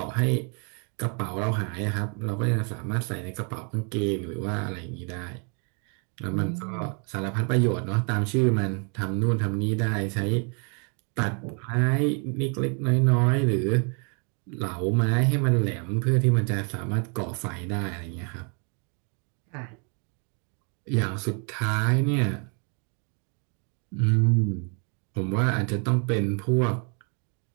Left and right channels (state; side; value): quieter; left; 38.0 dB